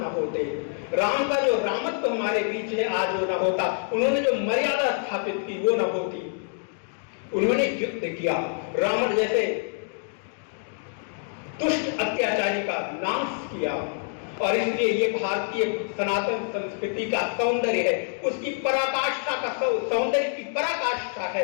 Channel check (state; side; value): silent; right; 61 dB below the other